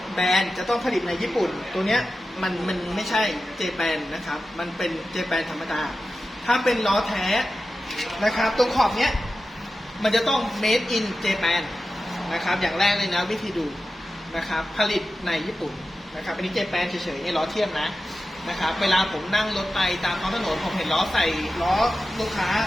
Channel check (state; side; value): normal; both; correlation 0.93